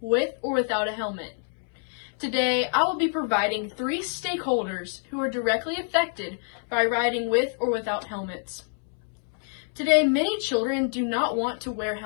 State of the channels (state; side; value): silent; right; 60 dB below the other